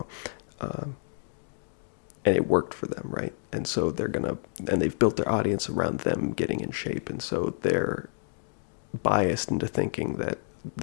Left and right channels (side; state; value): right; silent; digital silence